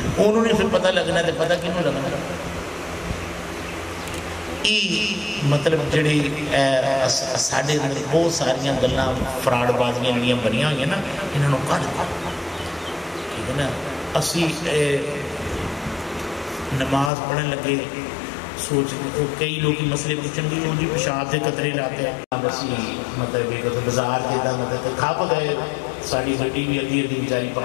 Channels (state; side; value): drops out; right; at 17.1 s